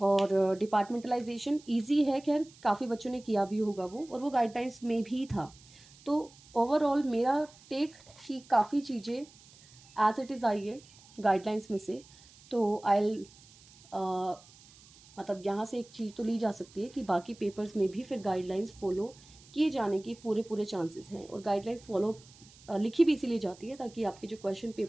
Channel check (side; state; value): right; noise; hiss, 24 dB below the sound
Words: डिपार्टमेंटलाइजेशन इजी है, खैर काफ़ी बच्चों ने किया भी होगा वो, और वो गाइडलाइंस में भी था। तो ओवरऑल मेरा टेक कि काफ़ी चीज़ें एज इट इज़ आई है गाइडलाइंस में से। तो आई मतलब यहाँ से एक चीज़ तो ली जा सकती है कि बाकी पेपर्स में भी फिर गाइडलाइंस फॉलो किए जाने के पूरे पूरे चांसेस हैं, और गाइडलाइंस फॉलो लिखी भी इसीलिए जाती है ताकि आपके जो क्वेश्चन